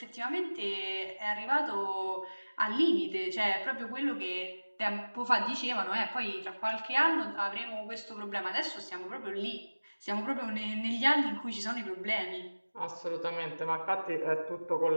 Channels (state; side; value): inverted; both; correlation -1.00